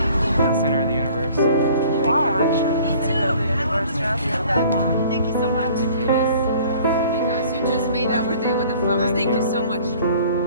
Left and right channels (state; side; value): inverted; both; correlation -0.52